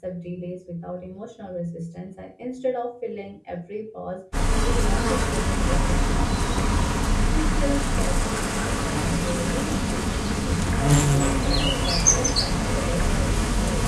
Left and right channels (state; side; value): identical; both; correlation 1.00